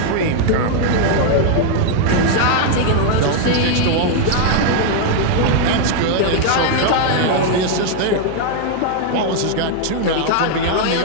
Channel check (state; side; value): different; both; correlation 0.00